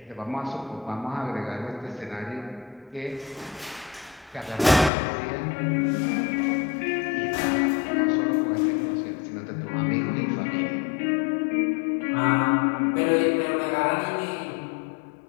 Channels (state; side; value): drops out; right; at 4.9 s